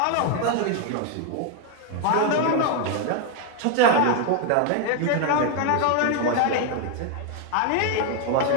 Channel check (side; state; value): both; different; correlation 0.01